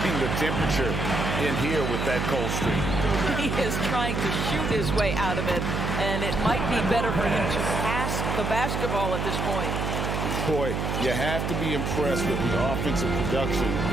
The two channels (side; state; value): right; noise; hum, 1 dB below the sound